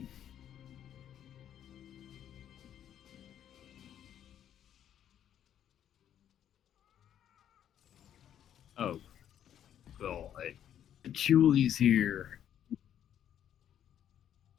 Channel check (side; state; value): right; quieter; 10.1 dB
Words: Oh, God. Patchouli's here.